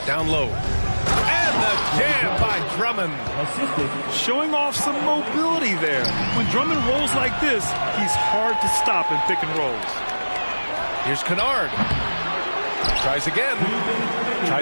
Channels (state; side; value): inverted; both; correlation -1.00